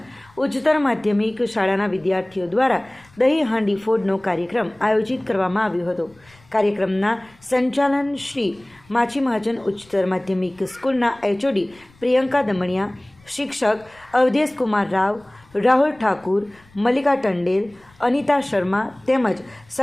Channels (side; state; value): left; noise; rumble, 29 dB below the sound